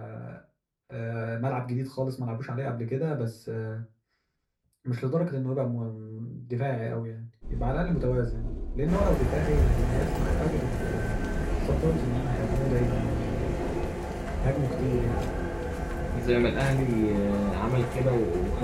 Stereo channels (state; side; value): identical; both; correlation 1.00